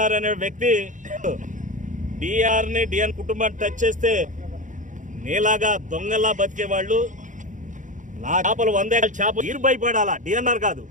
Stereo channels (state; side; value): late; left; 0.37 ms